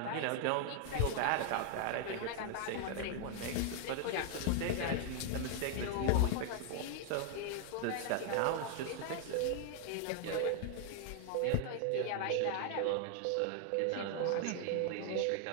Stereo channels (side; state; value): both; different; correlation 0.00